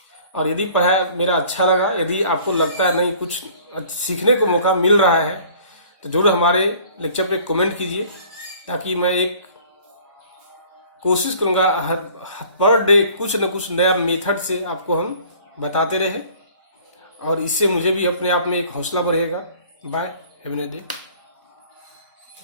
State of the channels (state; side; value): inverted; both; correlation -0.52